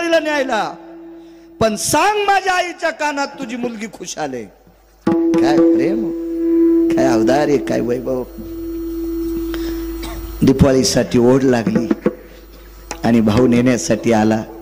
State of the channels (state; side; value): identical; both; correlation 1.00